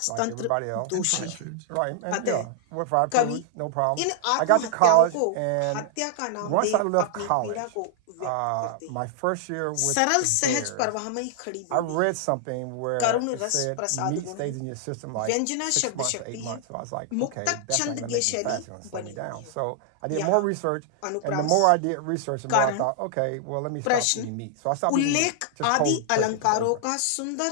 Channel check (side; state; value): both; different; correlation -0.01